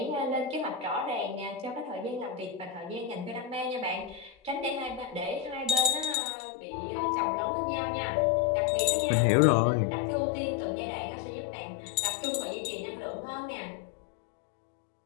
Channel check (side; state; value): right; drops out; at 6.2 s